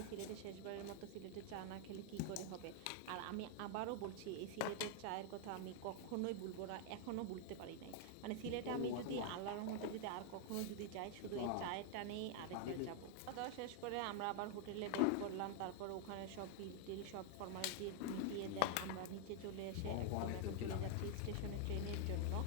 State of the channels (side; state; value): both; different; correlation 0.00